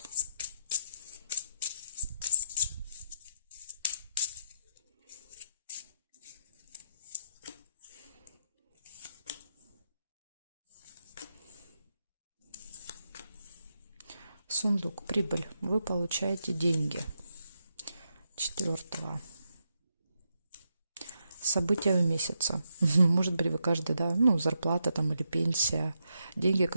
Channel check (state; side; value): inverted; both; correlation -0.82